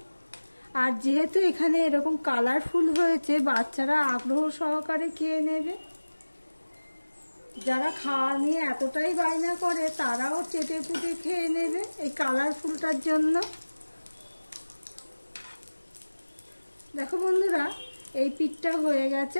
আর যেহেতু এখানে এরকম কালারফুল হয়েছে, বাচ্চারা আগ্রহ সহকারে খেয়ে নেবে। যারা খাওয়া নিয়ে এতটাই বায়না করে তারাও চেটে পুটে খেয়ে নেবে এই কালারফুলটার জন্য। দেখো বন্ধুরা, এই পিঠটা হয়ে গেছে।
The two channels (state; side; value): inverted; both; correlation -1.00